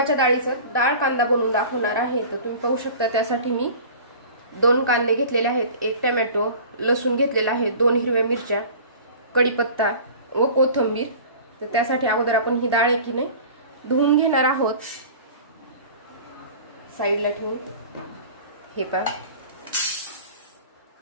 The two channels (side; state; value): both; inverted; correlation -0.41